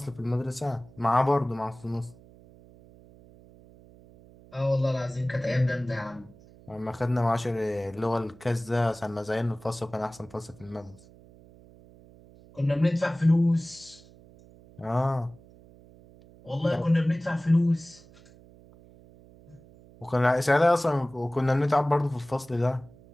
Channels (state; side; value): noise; right; hum, 24 dB below the sound